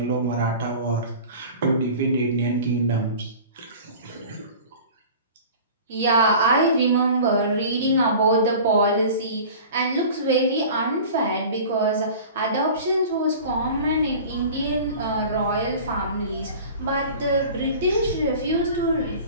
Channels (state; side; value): inverted; both; correlation -0.40